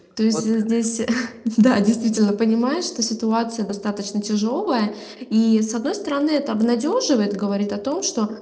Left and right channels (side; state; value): both; identical; correlation 1.00